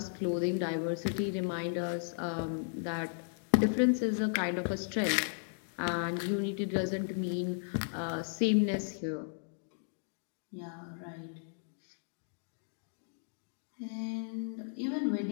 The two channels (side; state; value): right; silent; digital silence